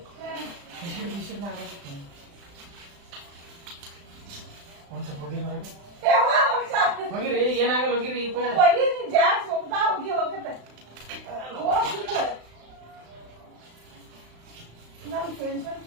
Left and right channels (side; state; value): left; late; 35 ms